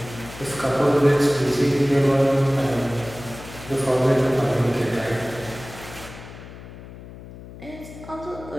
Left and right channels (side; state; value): left; noise; hum, 15 dB below the sound